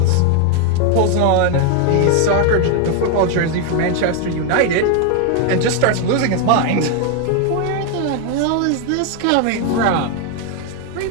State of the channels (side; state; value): both; different; correlation 0.01